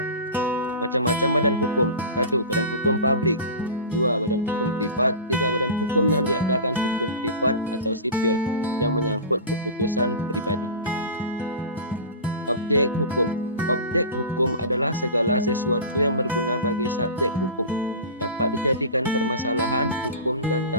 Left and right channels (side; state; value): both; inverted; correlation -0.32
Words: Macam-macam badan hukum. 1. Badan hukum publik. 2. Badan hukum privat. 3. Badan hukum yang diadakan hukum privat atau sipil yang menyangkut keputusan pribadi. Objek hukum. Objek hukum adalah segala sesuatu yang berguna bagi subjek hukum, dapat dijadikan permasalahan hukum dan